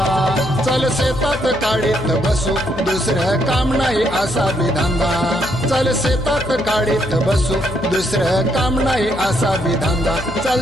चल शेतात काढीत बसू दुसरं काम नाही असा विधांदा चल शेतात काढीत बसू दुसरं काम नाही असा विधांदा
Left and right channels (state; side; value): noise; left; hum, 11 dB below the sound